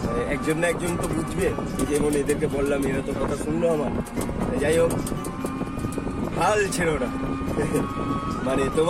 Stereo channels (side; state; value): both; identical; correlation 1.00